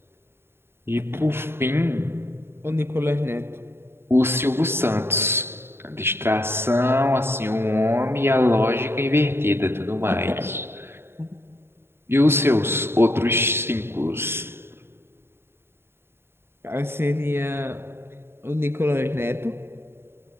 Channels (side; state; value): left; late; 0.11 ms